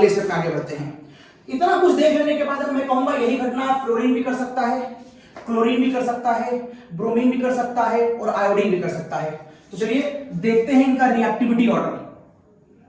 स्टेप में आगे बढ़ते हैं। इतना कुछ देख लेने के बाद अब मैं कहूंगा यही घटना फ्लोरीन भी कर सकता है, क्लोरीन भी कर सकता है, ब्रोमीन भी कर सकता है और आयोडीन भी कर सकता है। तो चलिए देखते हैं इनका रिएक्टिविटी ऑर्डर।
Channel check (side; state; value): both; identical; correlation 1.00